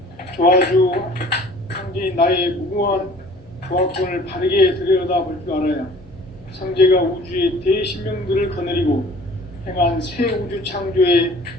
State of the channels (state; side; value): normal; both; correlation 0.50